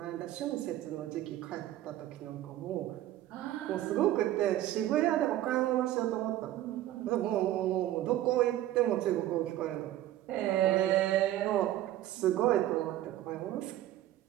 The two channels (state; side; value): quieter; left; 13.8 dB